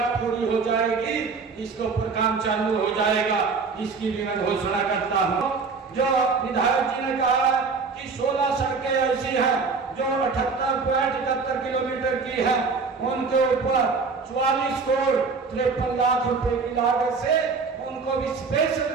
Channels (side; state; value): left; quieter; 4.7 dB